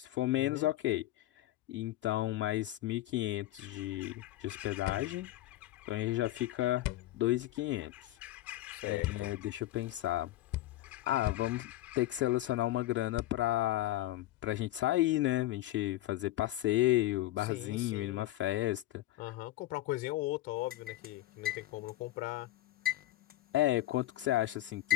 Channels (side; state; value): right; quieter; 15.4 dB